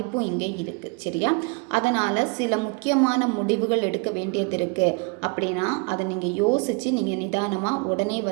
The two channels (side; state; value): left; quieter; 31.5 dB